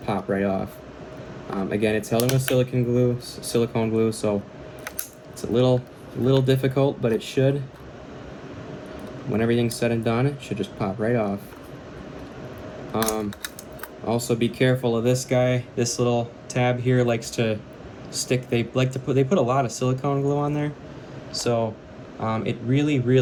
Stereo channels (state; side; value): identical; both; correlation 1.00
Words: pop right off. Again, it's held in with silicone glue, so it's a little difficult, but it should. When everything's said and done, it should just pop right off. Also be careful of this guy. This little tab here likes to stick. They put a lot of silicone glue on there, so it